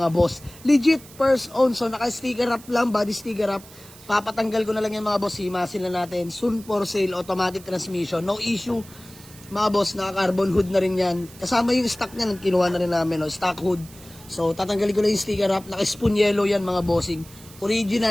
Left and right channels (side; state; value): right; noise; hiss, 21 dB below the sound